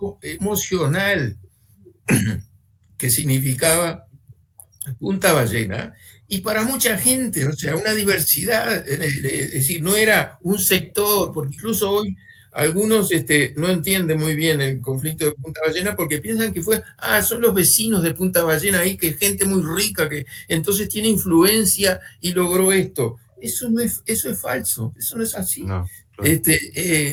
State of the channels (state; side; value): identical; both; correlation 1.00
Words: emocional que significaba Punta Ballena, y para mucha gente, o sea, una diversidad, es decir, no era un sector, porque incluso hoy algunos no entienden muy bien el conflicto de Punta Ballena porque piensan que son los vecinos de Punta Ballena ahí, que es gente muy rica, que entonces tiene influencia y logró esto. Eso es falso, eso no es así. No, claro.